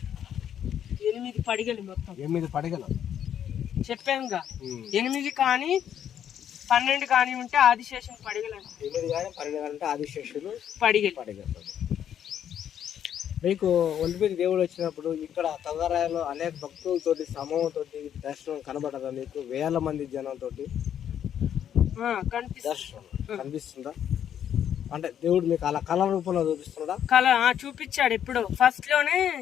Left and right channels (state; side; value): quieter; right; 9.6 dB